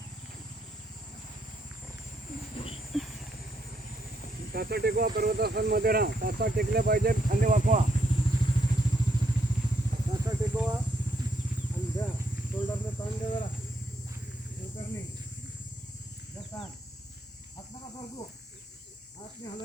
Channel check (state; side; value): normal; both; correlation 0.76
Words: टाचा टेकवा पर्वतासनमध्ये राहा टाचा टेकल्या पाहिजे खांदे वाकवा टाचा टेकवा आणि द्या शोल्डरने ताण द्या जरा शोल्डरने द्या ताण हात नका सरकू हात नाही